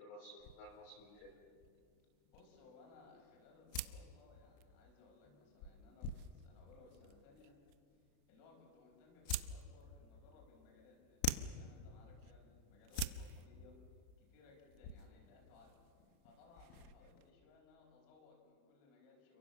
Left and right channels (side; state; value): right; late; 35 ms